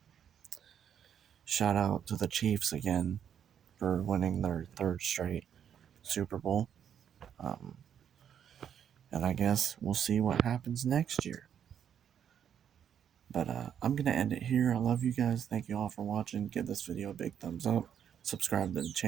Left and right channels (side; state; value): left; quieter; 8.8 dB